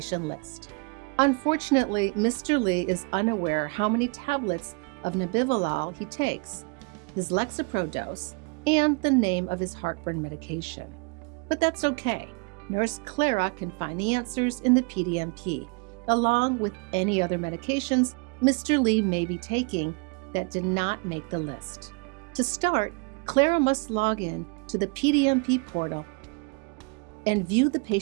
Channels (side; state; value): left; quieter; 32.4 dB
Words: list. Unfortunately, Mr. Lee is unaware how many tablets of nebivolol he takes, his Lexapro dose, and the name of his heartburn medication. But that's okay. Nurse Clara can find the answers in the PDMP, along with any other medications Mr. Lee may be taking that did not make the list. To start, Clara must log in to the PDMP portal and view the